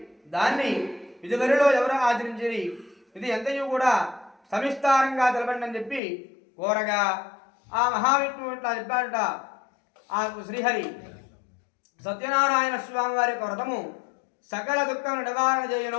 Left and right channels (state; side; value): drops out; right; at 6.0 s